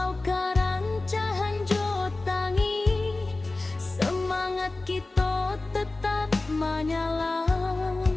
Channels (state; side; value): quieter; right; 3.1 dB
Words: karancahan jotangi, semangat kita tetap menyala.